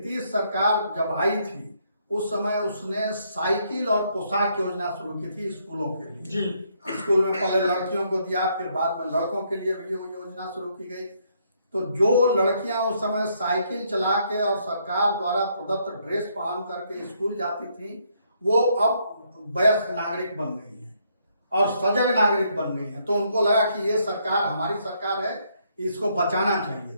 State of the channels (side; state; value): both; inverted; correlation -0.72